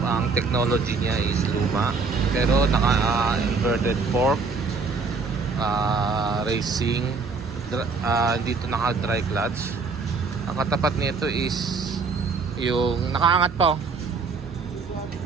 Ang technology niya is luma pero naka inverted fork, racing, dito naka dry clutch. Ang katapat nito is yung nakaangat pa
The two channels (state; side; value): quieter; left; 4.6 dB